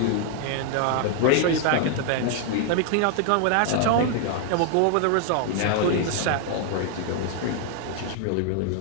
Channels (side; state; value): both; different; correlation 0.00